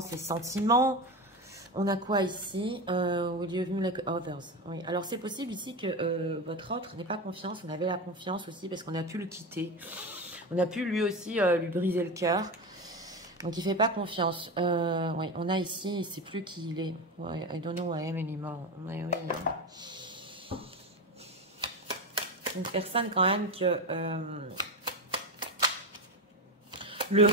ses sentiments. On a quoi ici? Will you view like others? Oui. Alors, c'est possible ici que votre autre n'ait pas confiance. On avait la confiance aussi parce qu'on a pu le quitter. On a pu lui aussi lui briser le cœur. Donc, il ne fait pas confiance. Oui, on a ici, il ne sait plus qui il est. Ouais, I don't know who I am anymore. Oui, oui. Une personne quand même que... le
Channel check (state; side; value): normal; both; correlation 0.19